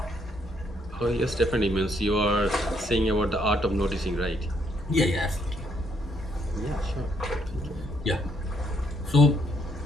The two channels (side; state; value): both; normal; correlation 0.72